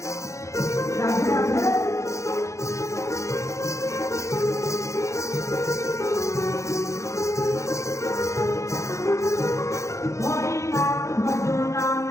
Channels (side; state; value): right; late; 0.15 ms